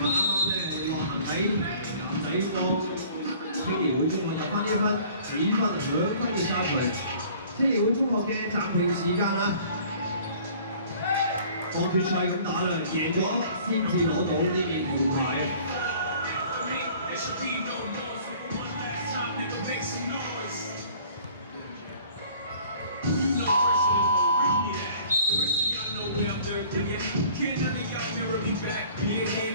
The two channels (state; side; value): inverted; both; correlation -0.50